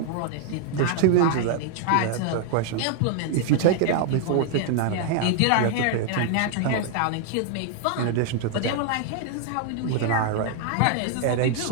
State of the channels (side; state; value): both; different; correlation 0.00